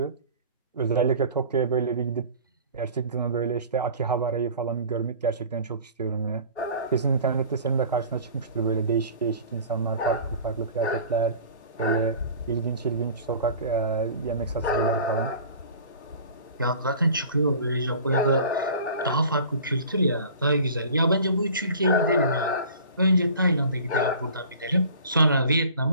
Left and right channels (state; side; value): inverted; both; correlation -0.43